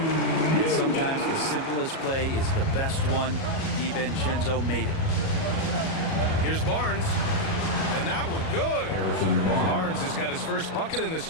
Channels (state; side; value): late; right; 37 ms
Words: sometimes the simplest play is the best one. DiVincenzo made it. Here's Barnes. And that one good. Barnes has got his first bucket in this